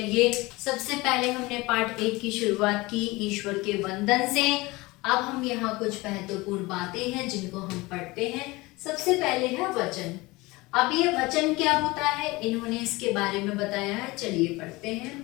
सबसे पहले हमने पाठ 1 की शुरुआत की ईश्वर के वंदन से। अब हम यहाँ कुछ महत्वपूर्ण बातें हैं जिनको हम पढ़ते हैं। सबसे पहले है वचन। अब ये वचन क्या होता है इन्होंने इसके बारे में बताया है। चलिए पढ़ते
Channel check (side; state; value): right; quieter; 22.1 dB